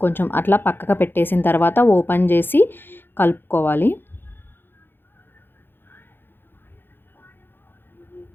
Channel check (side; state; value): right; late; 0.10 ms